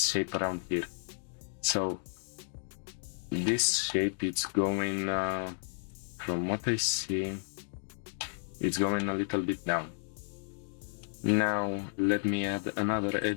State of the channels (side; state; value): right; silent; digital silence